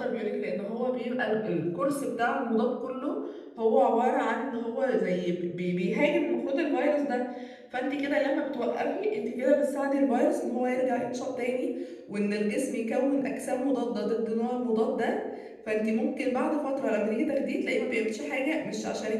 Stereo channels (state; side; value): identical; both; correlation 1.00